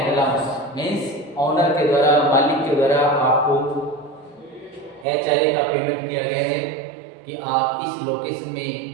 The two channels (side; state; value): left; drops out; at 5.1 s